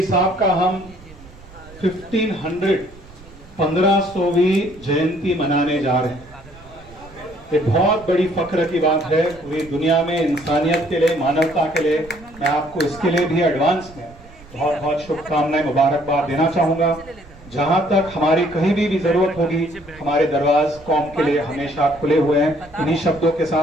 साहब का हम 1500वीं जयंती मनाने जा रहे हैं। ये बहुत बड़ी फख्र की बात है पूरी दुनिया में, इंसानियत के लिए, मानवता के लिए। मैं आपको इसके लिए भी एडवांस में बहुत बहुत शुभकामनाएं, मुबारकबाद देना चाहूंगा। जहां तक हमारी कहीं भी जरूरत होगी, हमारे दरवाज कौम के लिए हमेशा खुले हुए हैं। इन्हीं शब्दों के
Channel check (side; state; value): right; noise; rumble, 22 dB below the sound